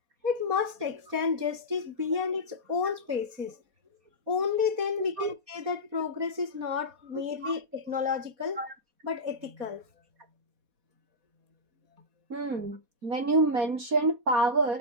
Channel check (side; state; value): left; late; 4.2 ms